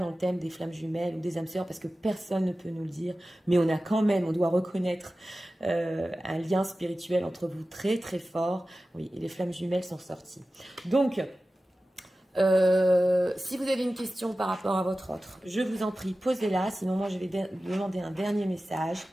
le thème des flammes jumelles ou des âmes sœurs parce que personne ne peut nous le dire. Mais on a quand même, on doit reconnaître un lien spirituel entre vous très très fort. Oui, et les flammes jumelles sont sorties. Donc, si vous avez une question par rapport à votre autre, je vous en prie, posez-la. Sinon, moi, je vais demander un dernier message.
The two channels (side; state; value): both; normal; correlation 0.95